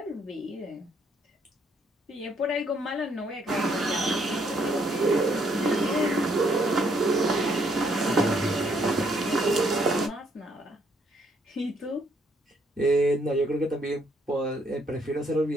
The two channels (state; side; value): normal; both; correlation 0.70